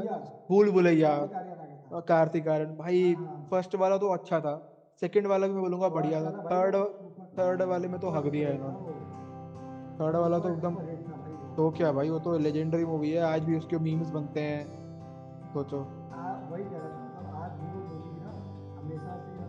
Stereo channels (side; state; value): both; identical; correlation 1.00